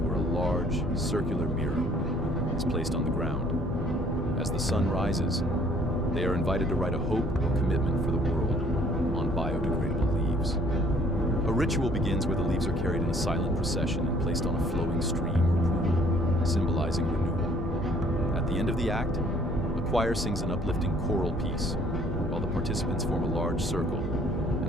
a large, circular mirror is placed on the ground. As the sun rises, they are invited to write a hope or commitment for the world on biodegradable leaves. A ritual begins where the leaves are carried in a silent procession and placed on a flowing stream or pool, symbolizing renewal. At the end of the act, a choir sings an uplifting choral piece, while the participants form a large circle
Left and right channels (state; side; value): normal; both; correlation 0.59